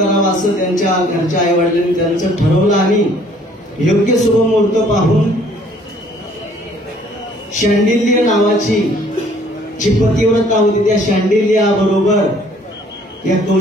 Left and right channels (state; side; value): normal; both; correlation 0.59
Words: असं त्यांच्या घरच्या आई वडिलांनी त्यांचं ठरवलं आणि योग्य शुभ मुहूर्त पाहून शांडिल्य नावाची जी पतिव्रता होती त्या शांडिल्या बरोबर या